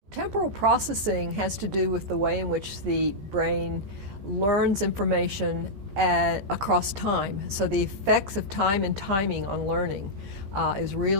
Temporal processing has to do with the way in which the brain learns information across time. So the effects of time and timing on learning is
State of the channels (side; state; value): left; late; 15 ms